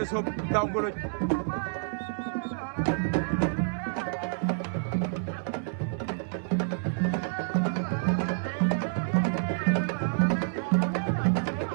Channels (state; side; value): silent; left; 59 dB below the other